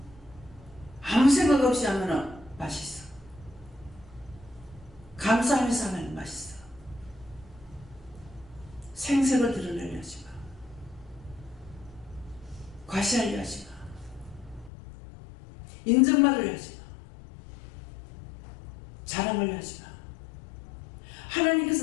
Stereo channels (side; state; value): right; drops out; at 14.7 s